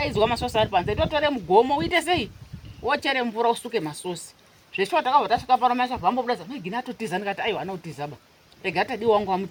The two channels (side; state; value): both; identical; correlation 1.00